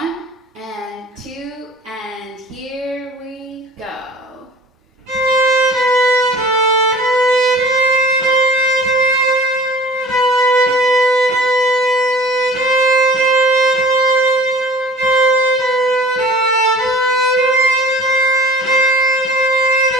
and 2, and here we go.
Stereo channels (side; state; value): both; normal; correlation 0.44